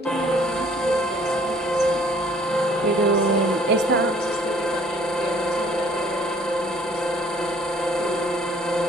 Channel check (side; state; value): both; normal; correlation 0.57